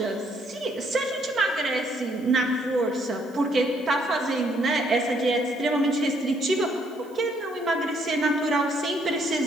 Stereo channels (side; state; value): right; noise; hiss, 28 dB below the sound